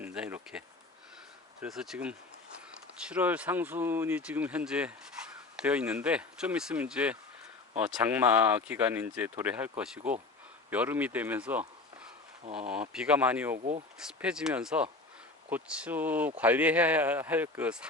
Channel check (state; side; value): quieter; right; 3.4 dB